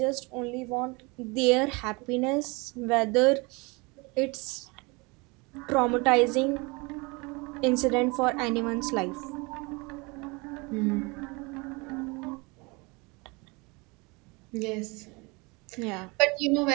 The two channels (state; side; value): quieter; left; 27.5 dB